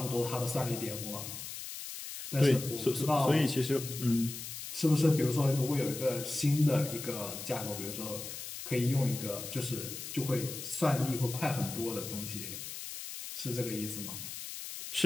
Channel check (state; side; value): noise; left; hiss, 8 dB below the sound